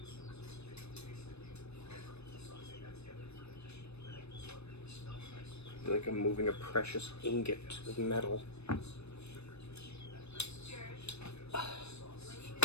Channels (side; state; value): right; late; 0.80 ms